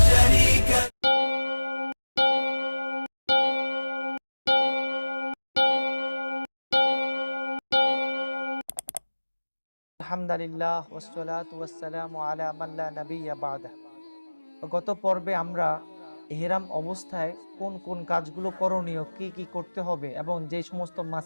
شريك আলহামদুলিল্লাহ ওয়াসসালাতু ওয়াসসালামু আলা মান লা নাবিয়্যা বা'দা। গত পর্বে আমরা ইহরাম অবস্থায় কোন কোন কাজগুলো করণীয়, কি কি করতে হবে এবং যে সমস্ত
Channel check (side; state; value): both; inverted; correlation -1.00